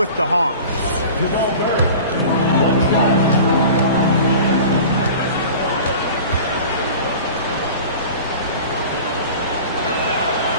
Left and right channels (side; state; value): both; inverted; correlation -0.39